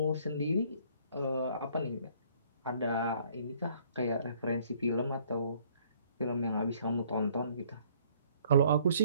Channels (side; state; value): both; inverted; correlation -0.60